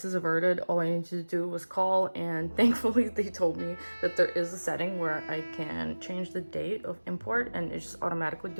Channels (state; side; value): inverted; both; correlation -1.00